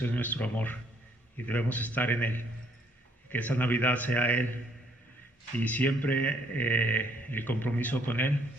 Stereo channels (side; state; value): both; normal; correlation 0.66